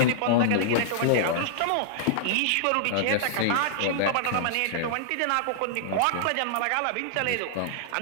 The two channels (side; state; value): both; different; correlation -0.01